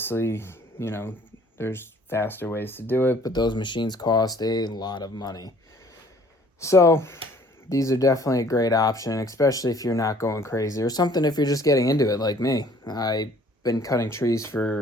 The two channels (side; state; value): both; normal; correlation 0.56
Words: you know, there's faster ways to do it, but those machines cost a lot of money. So these are definitely a great option, especially if you're not going crazy, or something if you're just getting into it like me. I've been cutting trees